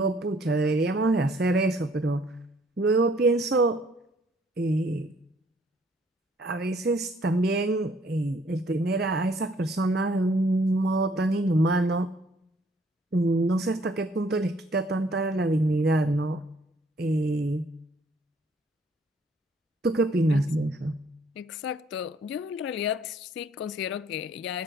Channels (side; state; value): both; normal; correlation 0.62